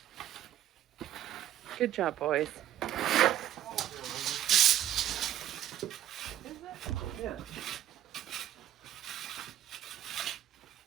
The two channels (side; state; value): left; quieter; 12.1 dB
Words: Good job, boys. Yeah.